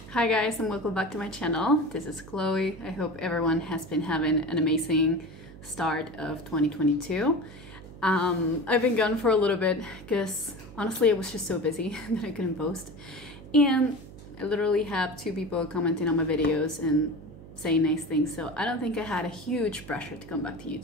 Hi guys, and welcome back to my channel. This is Chloe. I hope everyone has been having an amazing start of 2022. I've been gone for a little bit because honestly I was just so busy that I couldn't post. And I literally have 2 people commenting on my videos and saying nice things, so I don't think I had a huge pressure to come back to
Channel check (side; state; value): right; noise; hum, 17 dB below the sound